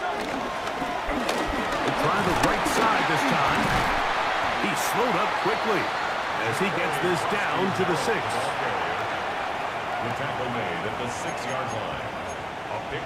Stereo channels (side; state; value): both; identical; correlation 1.00